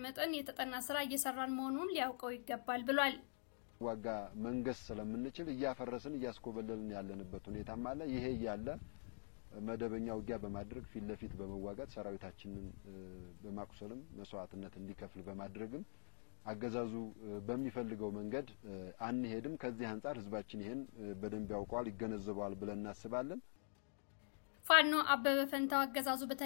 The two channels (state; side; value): silent; right; digital silence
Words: መጠን የተጠና ስራ እየሰራን መሆኑን ሊያውቀው ይገባል ብሏል። ዋጋ መንገስ ስለምንችል እያፈረስን እያስኮበለልን ያለንበት ሁኔታም አለ። ይሄ ያለ መደበኛ ውጊያ በማድረግ ፊት ለፊት በመዋጋት ሰራዊታችንን በማቁሰልም መስዋዕትነት እንዲከፍል በማድረግም አገዛዙ በሚፈልገው መንገድ አንሄድም። ከዚህ አንፃር ህዝባችን ይሄን በደንብ ያውቀዋል ይገነዘባል ብለን እናስባለን። ፋኖ አበበ ፈንታው አገዛዙ